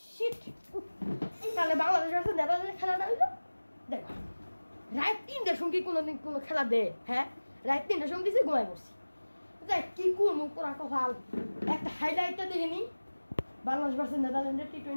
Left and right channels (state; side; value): inverted; both; correlation -1.00